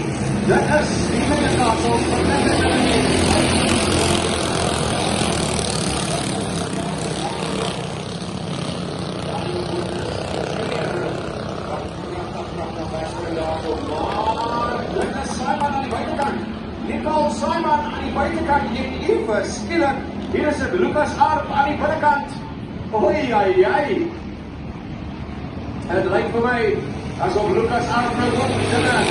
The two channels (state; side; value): identical; both; correlation 1.00